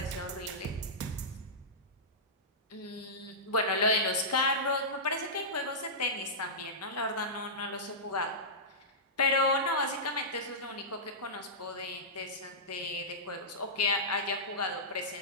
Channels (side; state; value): both; normal; correlation -0.16